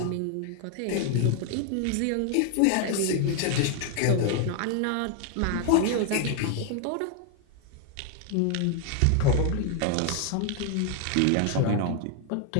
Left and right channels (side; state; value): both; different; correlation 0.00